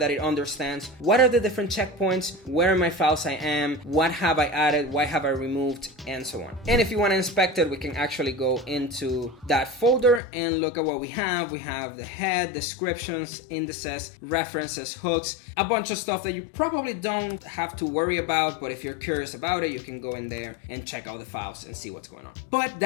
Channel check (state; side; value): drops out; right; at 10.2 s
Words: it understands what are the different checkpoints, where in my files I am, what have I added, why have I removed, and so on. And if you want to inspect it, we can actually go into that folder and look at what we have. We have the head, descriptions, indices, references, hooks, a bunch of stuff that you probably don't have to worry about, but if you're curious about it, you can go in there and check out the files and see what's going on. But